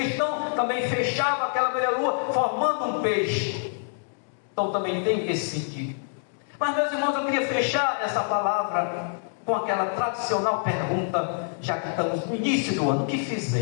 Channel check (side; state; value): right; silent; digital silence